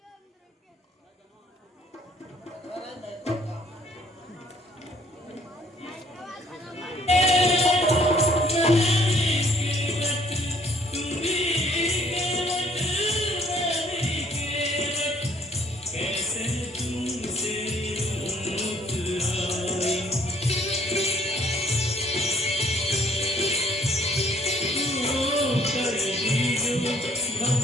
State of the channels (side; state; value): both; normal; correlation 0.61